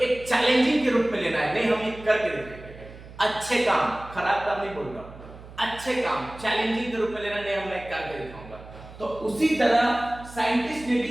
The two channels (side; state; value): right; noise; hum, 17 dB below the sound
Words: चैलेंजिंग के रूप में लेना है, नहीं हम ये करके देखेंगे, अच्छे काम, खराब काम नहीं बोल रहा, अच्छे काम चैलेंजिंग के रूप में लेना, नहीं हम मैं करके दिखाऊंगा। तो उसी तरह साइंटिस्ट ने